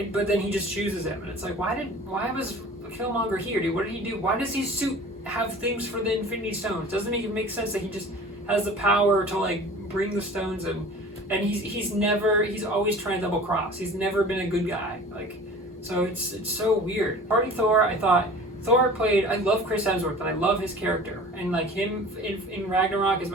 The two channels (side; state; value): both; normal; correlation 0.42